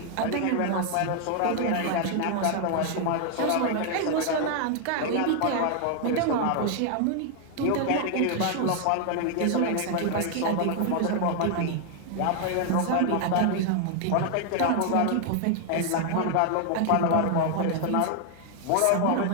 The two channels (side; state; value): both; different; correlation 0.00